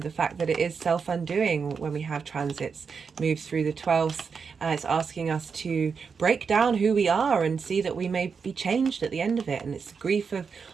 fact that it is self-undoing when we have transits move through the 12th. It's asking us to break down who we are and see that we may be changed at the end of it. And it's grief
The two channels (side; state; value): left; quieter; 5.7 dB